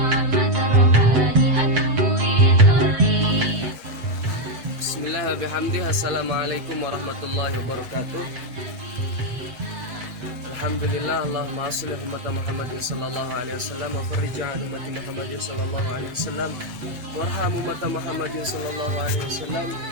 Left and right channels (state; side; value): late; left; 7.9 ms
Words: Bismillahirrahmanirrahim. Assalamualaikum warahmatullahi wabarakatuh. Alhamdulillah, Allahumma shalli ala Muhammadin sallallahu alaihi wasallam wa farij an ummati Muhammadin sallallahu alaihi wasallam warham ummati Muhammadin sallallahu alaihi wasallam